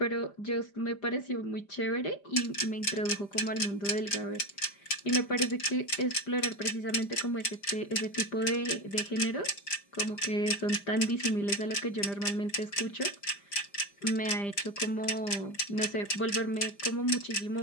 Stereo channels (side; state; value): right; late; 5.0 ms